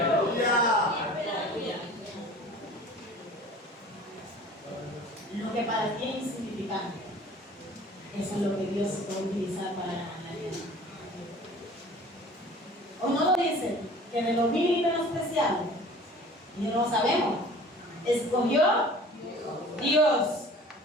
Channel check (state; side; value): normal; both; correlation 0.46